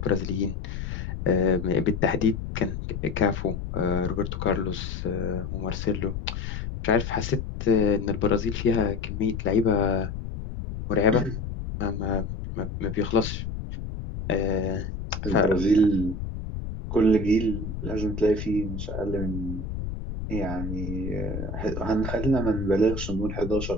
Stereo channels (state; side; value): noise; left; rumble, 6 dB below the sound